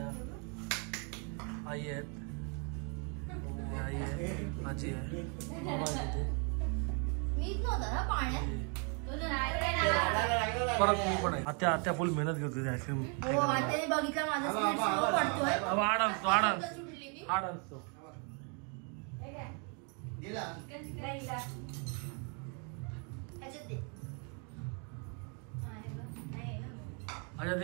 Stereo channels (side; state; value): left; quieter; 37.2 dB